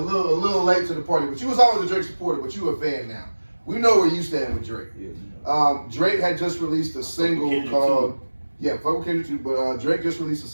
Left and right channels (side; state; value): both; inverted; correlation -1.00